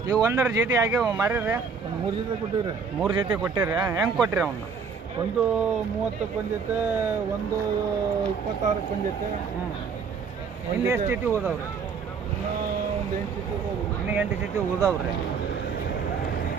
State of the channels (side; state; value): left; quieter; 5.7 dB